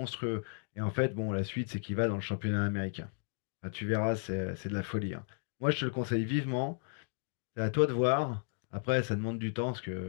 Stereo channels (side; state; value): right; silent; 55 dB below the other